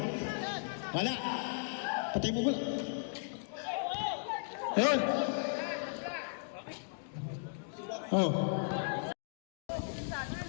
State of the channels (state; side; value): silent; right; digital silence